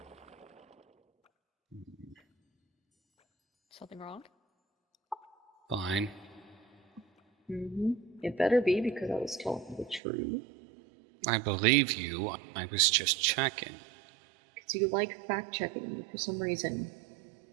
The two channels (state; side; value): drops out; left; at 10.0 s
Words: Something wrong? Fine. It better be because I was telling the truth. I believe you. I was just checking. Because you like fact-checking me for some reason.